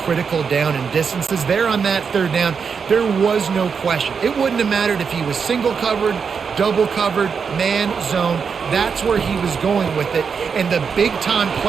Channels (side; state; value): left; quieter; 6.1 dB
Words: down and distances. There on that 3rd down, there was no question. It wouldn't have mattered if he was single covered, double covered, man, zone. That's where he was going with it, and the big-time